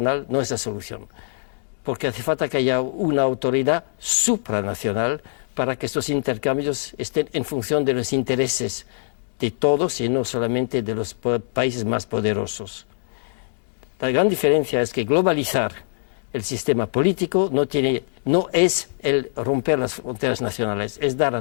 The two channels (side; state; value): right; silent; digital silence